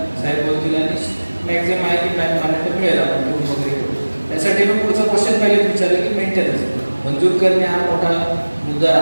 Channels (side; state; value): both; inverted; correlation -1.00